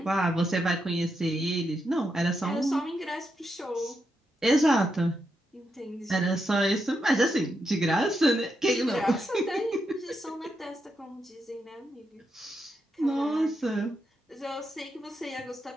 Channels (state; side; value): normal; both; correlation 0.84